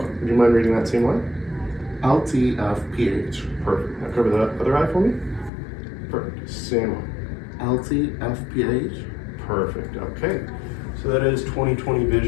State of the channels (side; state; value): right; drops out; at 5.5 s